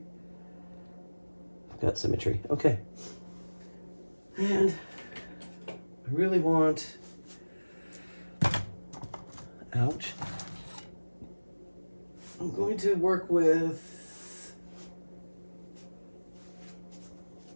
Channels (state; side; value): inverted; both; correlation -1.00